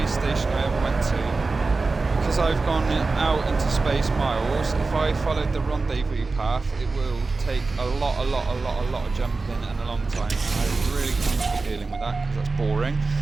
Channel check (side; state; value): left; quieter; 3.8 dB